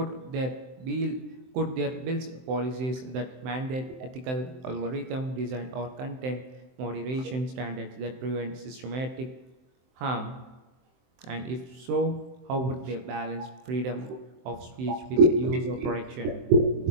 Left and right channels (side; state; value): left; late; 23 ms